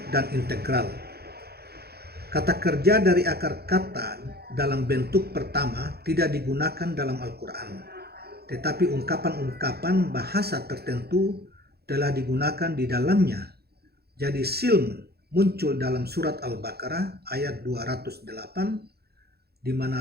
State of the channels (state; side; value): late; left; 0.46 ms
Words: dan integral. Kata kerja dari akar kata dalam bentuk pertama tidak digunakan dalam Al-Quran, tetapi ungkapan-ungkapan bahasa tertentu telah digunakan di dalamnya. Jadi silm muncul dalam surat Al-Baqarah ayat 208, di